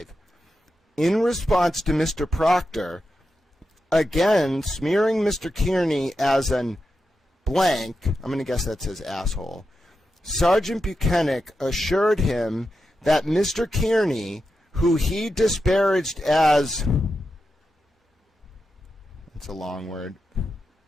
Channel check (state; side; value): normal; both; correlation 0.89